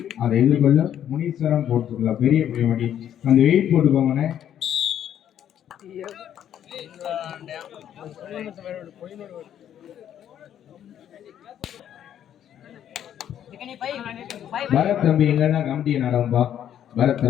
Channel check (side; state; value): right; quieter; 10.2 dB